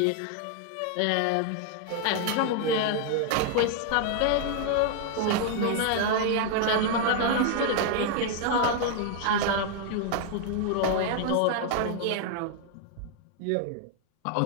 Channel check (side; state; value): both; different; correlation 0.00